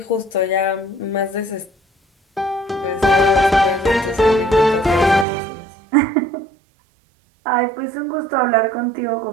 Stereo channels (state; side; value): drops out; left; at 5.2 s